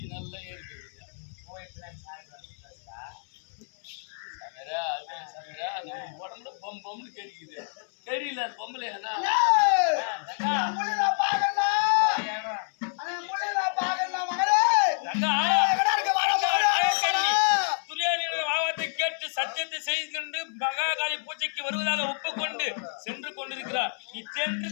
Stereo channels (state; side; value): silent; right; 59 dB below the other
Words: நல்லா ஏற்படுது சவரா அது சவரா நம்ம உடம்புல பம் பம்னு கேட்குது தெரியல அது பொம்பளை என்ன கேட்டு சத்தியத்தை செய்து கொண்டு மகாகாளி பூஜைக்கு வருவதாக ஒப்புக்கொண்டு சென்று கொண்டிருக்கிறார். நீ சென்று